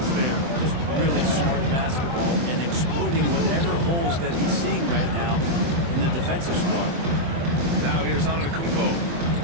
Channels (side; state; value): left; late; 24 ms